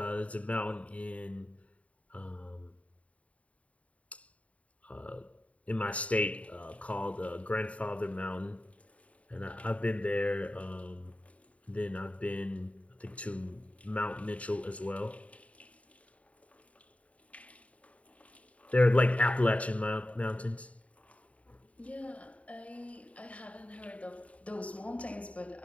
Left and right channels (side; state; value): right; late; 0.066 ms